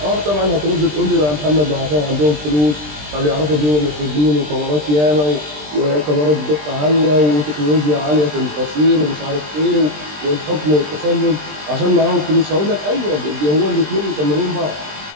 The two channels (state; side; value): late; left; 20 ms